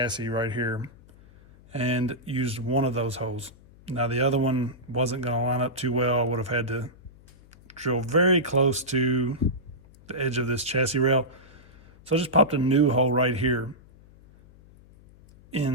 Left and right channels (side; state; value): left; noise; hum, 25 dB below the sound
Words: right here and used one of those holes. Now the other one wasn't going to line up too well. I would have had to drill very close to the edge of this chassis rail. So I just popped a new hole right here